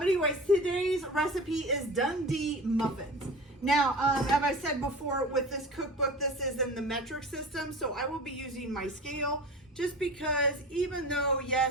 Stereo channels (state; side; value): normal; both; correlation 0.35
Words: today's recipe is Dundee muffins. Now, as I said before, with this cookbook, this is in the metric system, so I will be using my scale just because even though,